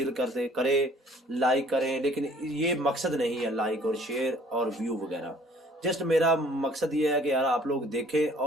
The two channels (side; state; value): both; normal; correlation 0.55